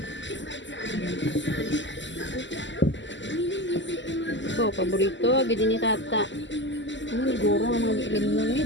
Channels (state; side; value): late; right; 0.54 ms